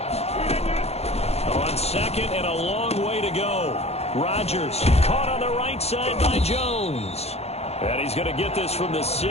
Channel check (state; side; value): late; right; 0.30 ms